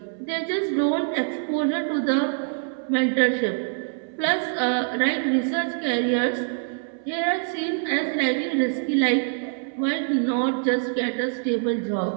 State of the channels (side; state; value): left; silent; 62 dB below the other